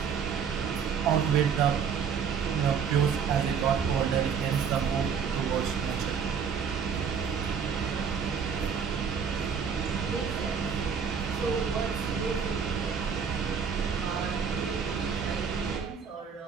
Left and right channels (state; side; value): quieter; left; 6.7 dB